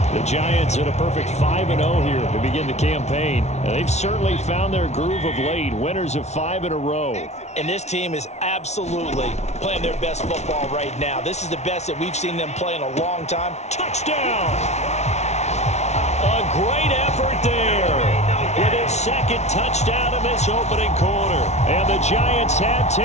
The Giants at a perfect 5-0 here to begin the campaign. And they've certainly found their groove of late, winners of 5 in a row. And this team is absolutely playing their best football right now. This is the best that we've seen them play in a long time. Touchdown! A great effort there with his second touchdown in this opening quarter. And the Giants have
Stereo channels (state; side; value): late; right; 0.32 ms